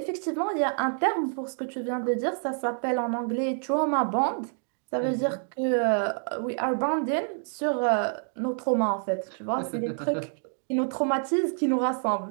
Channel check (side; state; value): left; silent; 60 dB below the other